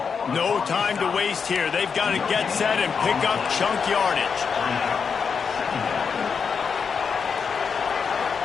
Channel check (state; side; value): quieter; right; 6.0 dB